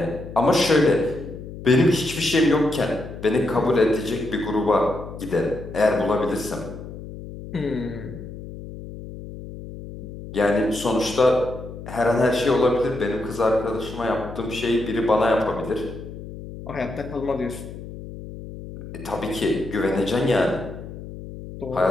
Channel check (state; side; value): noise; left; hum, 12 dB below the sound